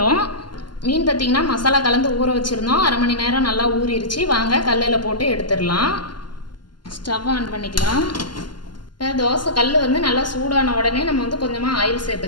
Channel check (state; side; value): late; right; 0.71 ms